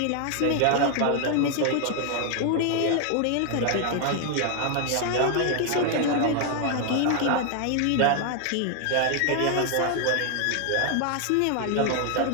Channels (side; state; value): both; different; correlation 0.00